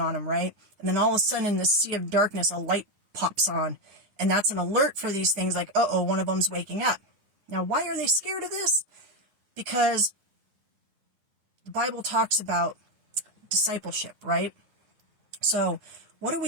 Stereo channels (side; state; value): left; late; 9.7 ms